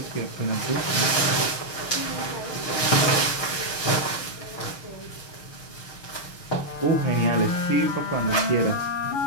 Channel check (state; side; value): late; right; 6.4 ms